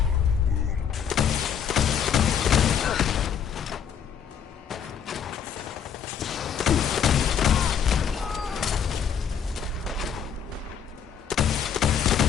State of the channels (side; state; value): right; quieter; 7.9 dB